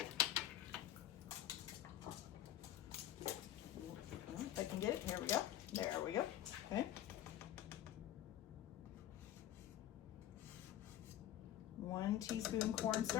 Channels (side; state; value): right; quieter; 12.3 dB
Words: If I can get it, here we go. There we go. Okay. 1 teaspoon